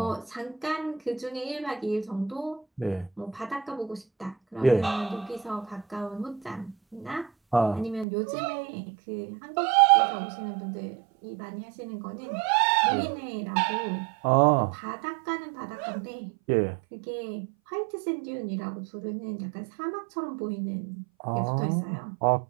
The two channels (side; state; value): left; drops out; at 8.1 s